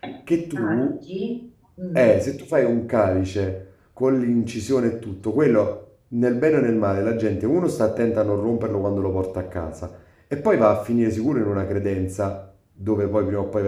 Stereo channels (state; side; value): identical; both; correlation 1.00